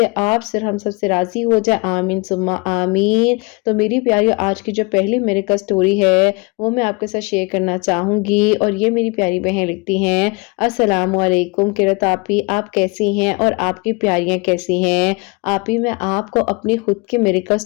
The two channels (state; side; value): quieter; right; 28.1 dB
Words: آپ سے، ہم سب سے راضی ہو جائے، آمین ثم آمین۔ تو میری پیاری آج کی جو پہلی میریکل سٹوری ہے وہ میں آپ کے ساتھ شیئر کرنا چاہوں گی، اور یہ میری پیاری بہن لکھتی ہیں، السلام علیکم قرۃ آپی، آپ کیسی ہیں اور آپ کی پیاریاں کیسی ہیں؟ آپی میں آپ کو اپنی خود کی میریکل